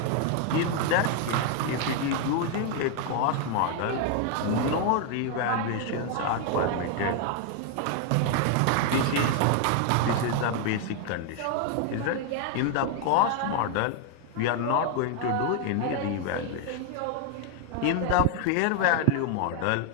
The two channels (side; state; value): both; different; correlation 0.00